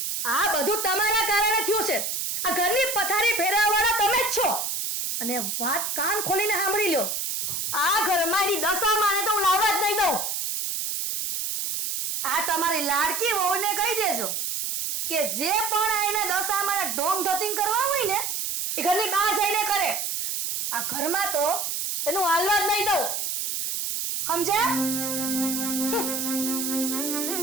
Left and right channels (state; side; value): noise; right; hiss, 2 dB below the sound